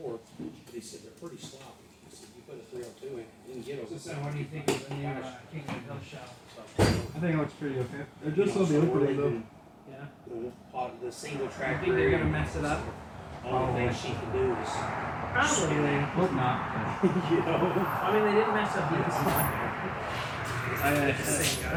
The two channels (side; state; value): both; identical; correlation 1.00